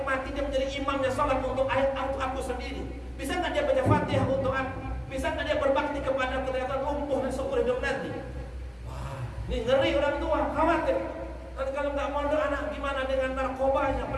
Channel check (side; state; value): both; identical; correlation 1.00